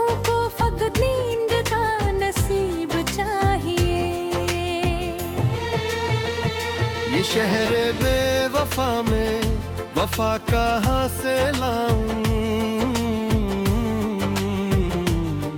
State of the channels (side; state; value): both; identical; correlation 1.00